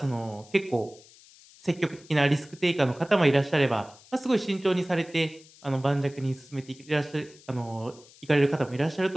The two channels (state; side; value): noise; left; hiss, 24 dB below the sound